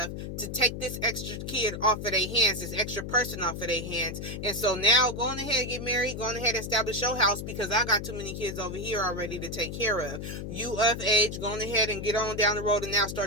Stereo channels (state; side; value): noise; left; hum, 7 dB below the sound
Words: to take this extra kid off of their hands, this extra person off of their hands. And so now go on ahead and get married, go on ahead and establish your house, because I got too many kids over here already to take care of. You of age, go on ahead and get on down the road and now